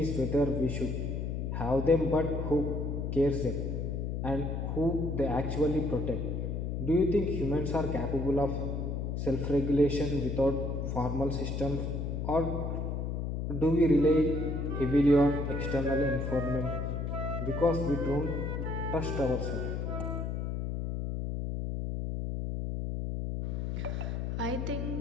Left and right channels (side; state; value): left; noise; hum, 2 dB below the sound